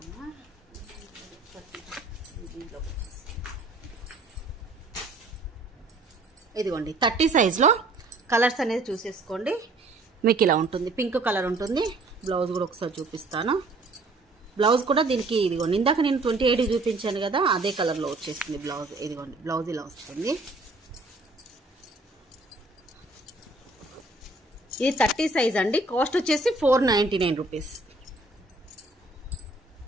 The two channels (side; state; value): left; quieter; 3.1 dB